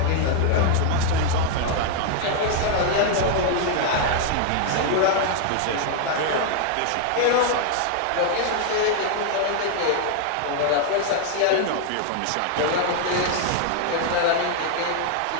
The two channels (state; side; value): different; both; correlation 0.00